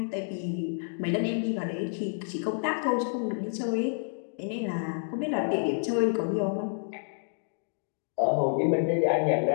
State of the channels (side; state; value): right; silent; digital silence